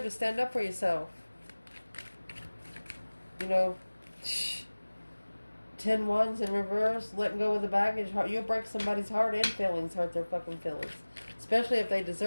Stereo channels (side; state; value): both; inverted; correlation -1.00